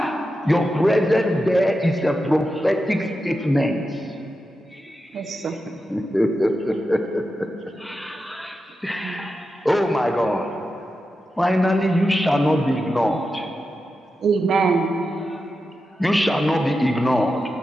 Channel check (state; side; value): normal; both; correlation 0.90